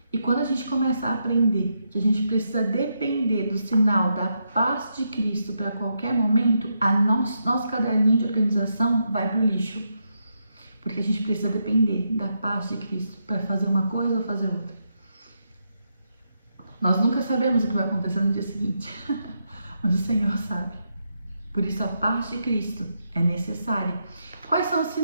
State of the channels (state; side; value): inverted; both; correlation -0.82